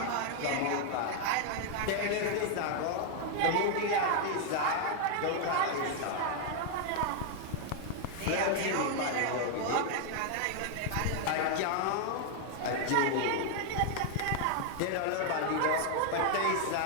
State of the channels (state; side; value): different; both; correlation 0.00